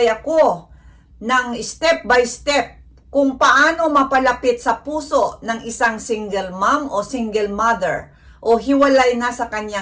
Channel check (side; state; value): both; identical; correlation 1.00